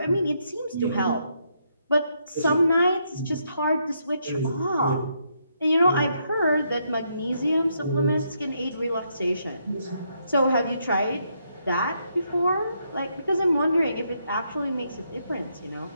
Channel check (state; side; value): inverted; both; correlation -0.77